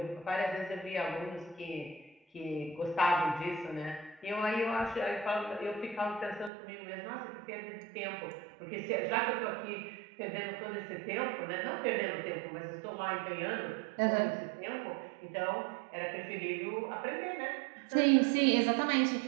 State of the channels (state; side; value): drops out; left; at 6.5 s